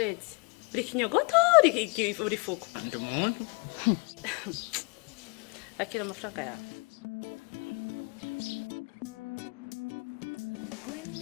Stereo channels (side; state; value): right; quieter; 33.7 dB